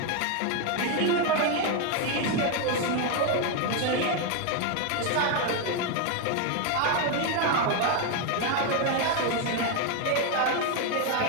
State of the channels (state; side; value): different; both; correlation 0.01